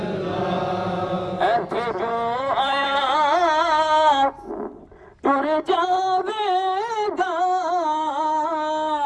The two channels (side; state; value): both; identical; correlation 1.00